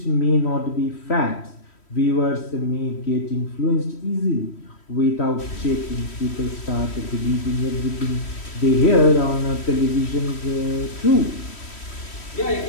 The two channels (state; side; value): late; right; 3.1 ms